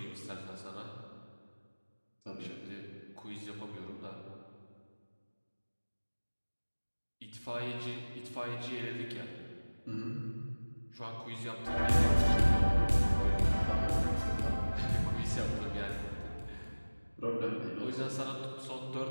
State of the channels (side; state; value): both; inverted; correlation -1.00